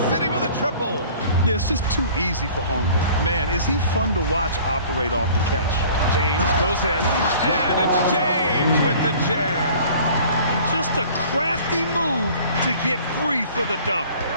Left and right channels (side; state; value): both; inverted; correlation -0.49